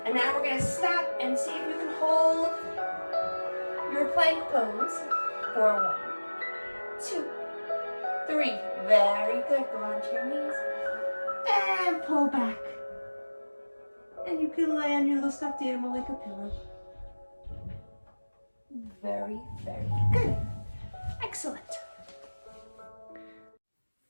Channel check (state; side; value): inverted; both; correlation -1.00